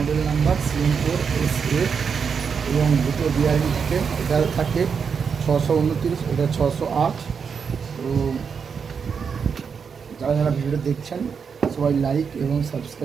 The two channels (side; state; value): left; quieter; 6.2 dB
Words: নাম্বার CM4SA এবং দুটো বিয়ারিং থাকে। এটা থাকে 629, এটা 608। তো যারা যারা ভিডিওটা দেখছেন সবাই লাইক এবং